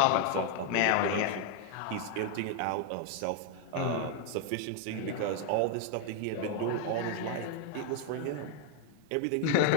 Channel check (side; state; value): both; different; correlation 0.01